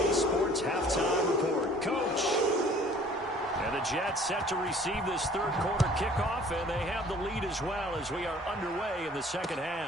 Sports halftime report. Coach. And the Jets set to receive this third quarter kickoff, and they have the lead as well as we are underway in the second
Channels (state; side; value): normal; both; correlation 0.52